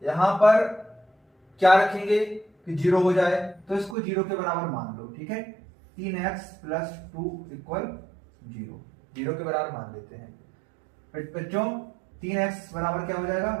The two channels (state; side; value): drops out; left; at 4.0 s